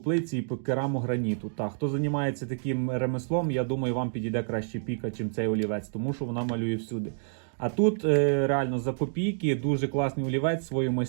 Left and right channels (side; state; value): left; silent; digital silence